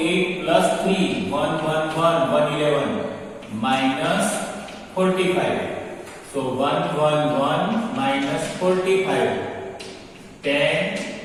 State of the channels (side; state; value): both; identical; correlation 1.00